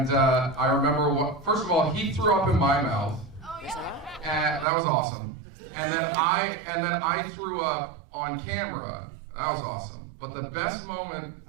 I remember first of all, he threw up in my mouth. Oh yeah. And that was awesome. And then I threw up on camera. That was awesome. But the best moment,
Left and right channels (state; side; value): drops out; left; at 4.7 s